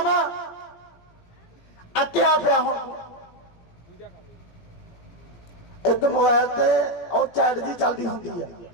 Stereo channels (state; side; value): late; right; 17 ms